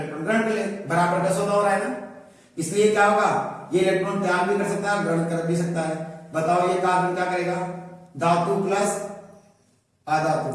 ग्रहण कर ले, बराबर का सौदा हो रहा है ना, इसलिए क्या होगा, ये इलेक्ट्रॉन त्याग भी कर सकता है, ग्रहण कर भी सकता है। बताओ ये कार्बन क्या करेगा, धातु प्लस अधातु,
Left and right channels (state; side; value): identical; both; correlation 1.00